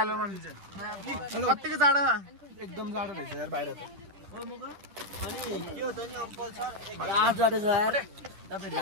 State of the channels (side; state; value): left; late; 10 ms